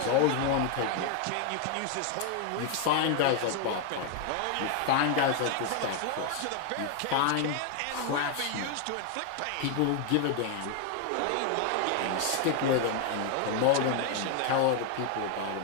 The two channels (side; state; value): both; different; correlation 0.00